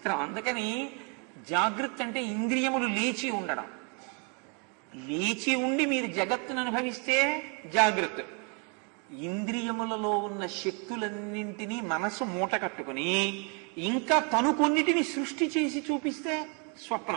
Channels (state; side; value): quieter; left; 36.4 dB